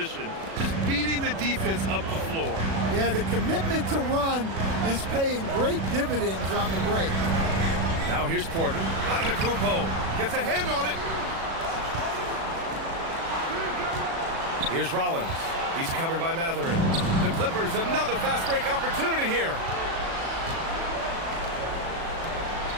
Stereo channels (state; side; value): late; left; 36 ms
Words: Just beating the defense up the floor. Yeah, the commitment to run is paying great dividends on the break. Now here's Porter. Antetokounmpo gets a hand on it. Here's Rollins. He's covered by Matherin. The Clippers, another fast break opportunity here.